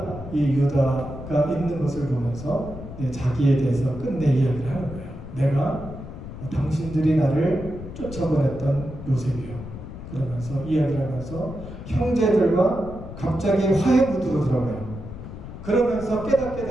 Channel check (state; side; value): noise; left; rumble, 11 dB below the sound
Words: 유다가 있는 것을 보면서 자기에 대해서 끝내 이야기를 하는 거예요. 내가 당신들이 나를 쫓아보냈던 요셉이요. 그러면서 이야기를 하면서 형제들과 갑자기 화해 무드로 들어가요. 그러면서 깨닫게